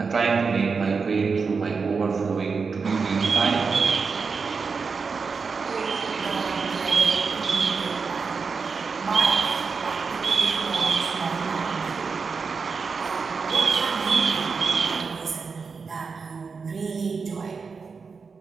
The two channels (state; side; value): quieter; left; 5.1 dB